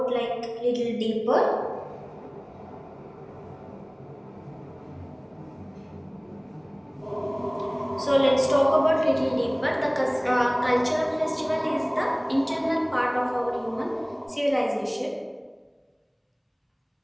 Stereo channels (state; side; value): identical; both; correlation 1.00